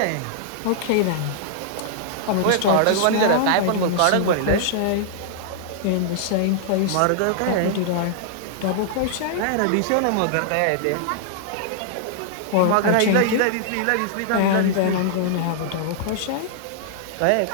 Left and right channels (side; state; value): both; different; correlation -0.01